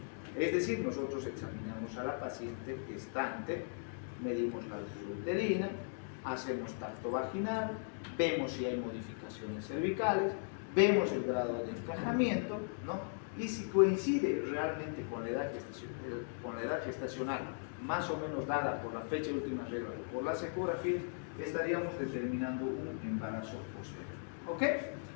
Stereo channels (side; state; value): right; silent; digital silence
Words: Es decir, nosotros examinamos a la paciente gestante, medimos la altura uterina, hacemos tacto vaginal, vemos si hay modificaciones cervicales, vemos el grado de encajamiento, ¿no? Y si coincide realmente con la edad gestacional, más o menos dada por la fecha de última regla o por las ecografías, estaríamos determinando un embarazo posterior. ¿Ok?